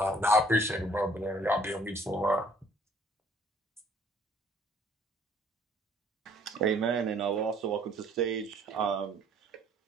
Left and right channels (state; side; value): normal; both; correlation 0.59